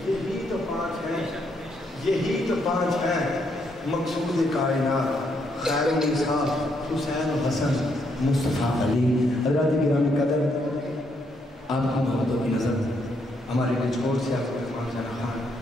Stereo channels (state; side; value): normal; both; correlation 0.75